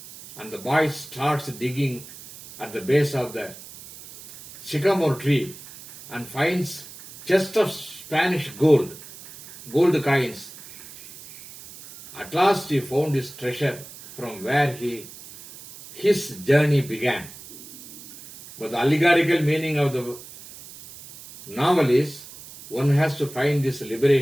And the boy starts digging at the base of the sycamore tree and finds chest of Spanish gold coins. At last he found his treasure from where his journey began. But the allegorical meaning of the novel is one has to find this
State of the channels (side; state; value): right; noise; hiss, 17 dB below the sound